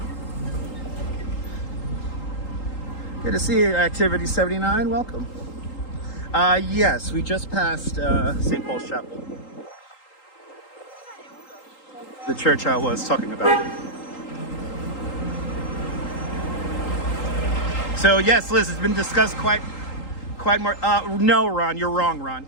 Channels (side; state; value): right; late; 3.8 ms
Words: Good to see you, Activity 79. Welcome. Yes, we just passed St. Paul's Chapel. The church I was talking about. So yes, Liz, it's been discussed quite more. No, Ron, you're wrong,